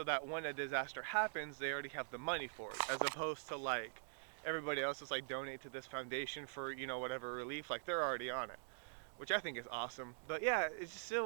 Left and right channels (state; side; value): silent; left; digital silence